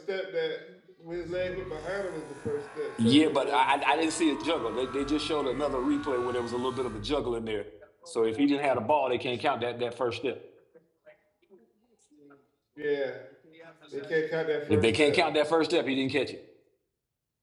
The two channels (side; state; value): both; identical; correlation 1.00